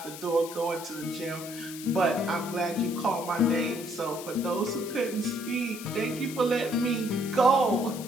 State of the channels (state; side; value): noise; left; hiss, 13 dB below the sound